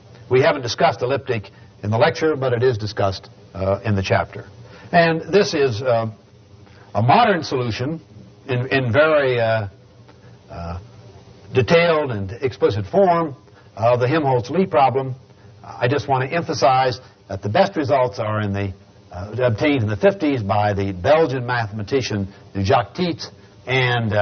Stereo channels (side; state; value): both; identical; correlation 1.00